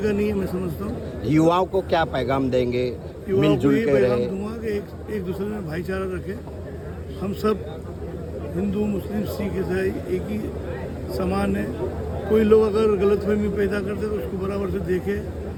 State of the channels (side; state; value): both; identical; correlation 1.00